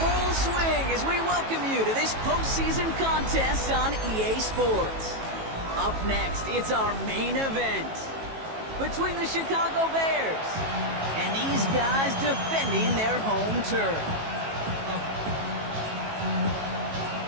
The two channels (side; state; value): left; late; 18 ms